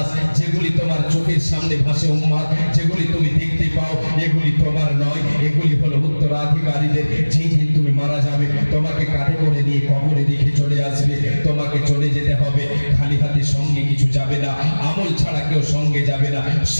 যেগুলি তোমার চোখের সামনে ভাসে উম্মত, যেগুলি তুমি দেখতে পাও, এগুলি তোমার নয়, এগুলি হলো উত্তরাধিকারীদের। যেই দিন তুমি মারা যাবে, তোমাকে কাঁধে করে নিয়ে কবরে রেখে চলে আসবে, তোমাকে চলে যেতে হবে। খালি হাতে সঙ্গে কিছু যাবে না, আমল ছাড়া কেউ সঙ্গে যাবে না,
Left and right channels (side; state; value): both; inverted; correlation -1.00